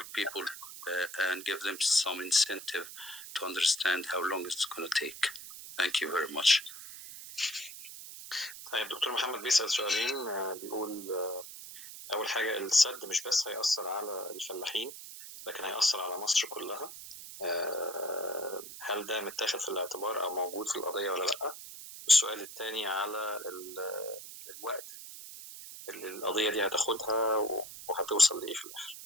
people and give them some incentive to understand how long it's going to take. Thank you very much. طيب دكتور محمد بيسأل سؤالين. بيقول أول حاجة السد مش بس هيأثر على الفلاحين لكن هيأثر على مصر كلها. هل ده متاخد في الاعتبار أو موجود في القضية ولا لأ؟ السؤال الثاني على الوقت اللي القضية دي هتاخدها وهتوصل لإيه في الآخر.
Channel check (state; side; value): noise; right; hiss, 12 dB below the sound